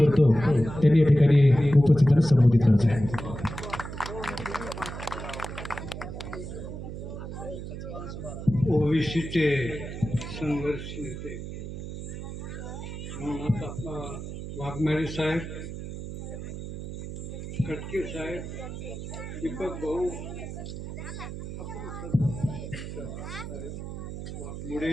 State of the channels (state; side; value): noise; right; hum, 8 dB below the sound